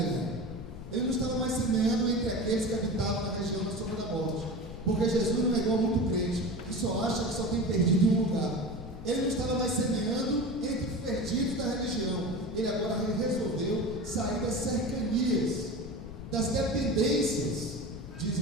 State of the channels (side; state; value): left; noise; rumble, 12 dB below the sound